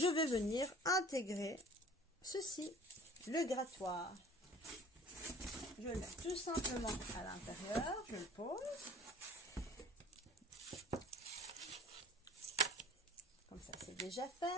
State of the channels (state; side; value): normal; both; correlation 0.46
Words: vais venir intégrer ceci, le grattoir. Je le mets tout simplement à l'intérieur, je le pose. Comme ça, c'est déjà